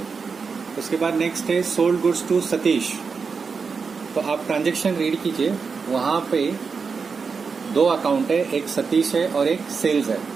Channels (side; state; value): left; quieter; 5.2 dB